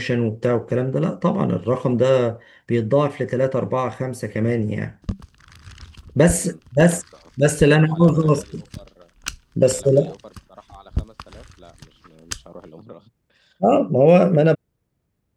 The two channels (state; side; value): identical; both; correlation 1.00